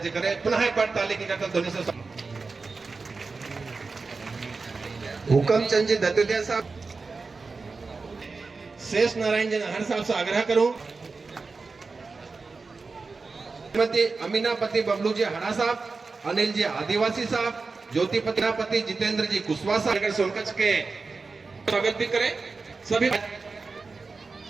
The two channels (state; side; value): quieter; left; 4.2 dB